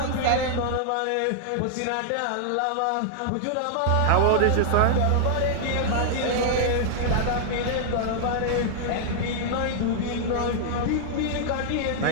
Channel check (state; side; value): different; both; correlation -0.01